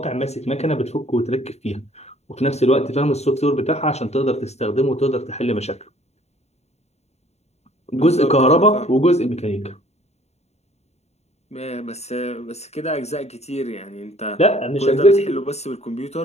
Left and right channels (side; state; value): right; late; 0.31 ms